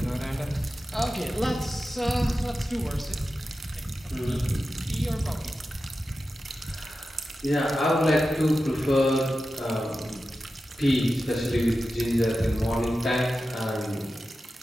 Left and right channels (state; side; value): normal; both; correlation 0.92